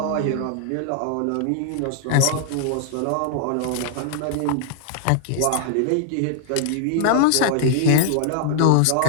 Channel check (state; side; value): different; both; correlation -0.01